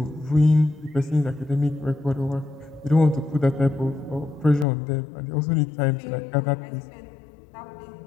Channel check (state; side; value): drops out; right; at 4.7 s